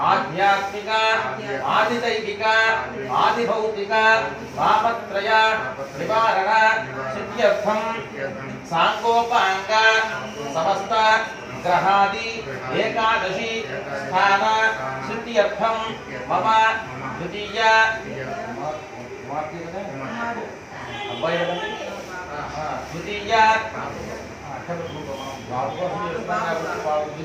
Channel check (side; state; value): both; identical; correlation 1.00